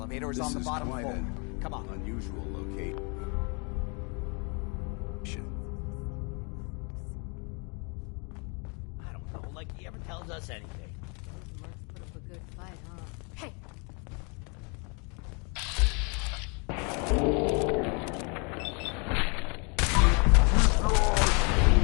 is on the bottom floor. Come on. Unusual location. I don't know, like he ever tells us anything. Those mercs put up a good fight, huh? Hey!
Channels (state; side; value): quieter; right; 33.6 dB